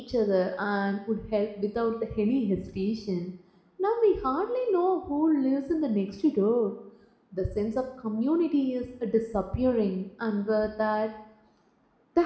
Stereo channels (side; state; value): both; identical; correlation 1.00